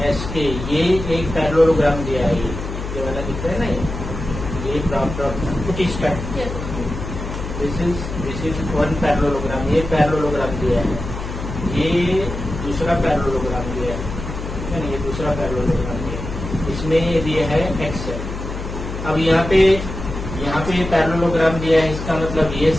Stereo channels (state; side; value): noise; left; hum, 7 dB below the sound